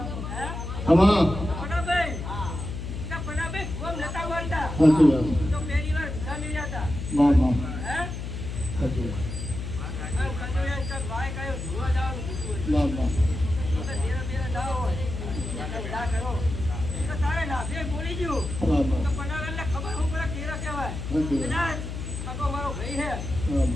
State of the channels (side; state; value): left; noise; hum, 6 dB below the sound